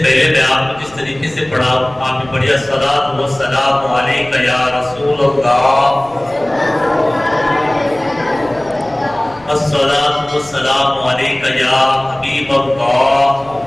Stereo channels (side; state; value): left; noise; rumble, 25 dB below the sound